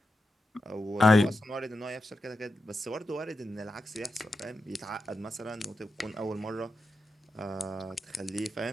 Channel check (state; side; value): normal; both; correlation 0.89